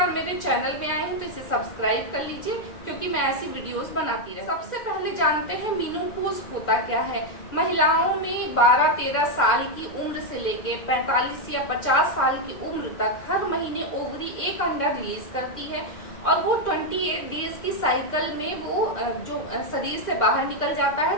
मेरे चैनल में आए हैं तो इसे सब्सक्राइब कर लीजिए, क्योंकि मैं ऐसी वीडियोस बनाती रहती हूँ। सबसे पहले जानते हैं मेनोपॉज होता क्या है। महिलाओं में 12-13 साल की उम्र से लेके 45 या 50 साल की उम्र तक हर महीने ओवरी एक अंडा रिलीज करती है और वो 28 डेज की साइकिल में वो जो शरीर से बाहर निकल जाता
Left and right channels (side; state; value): right; late; 2.0 ms